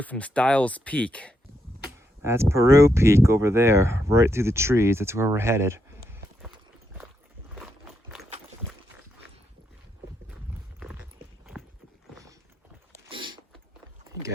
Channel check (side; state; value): both; normal; correlation 0.80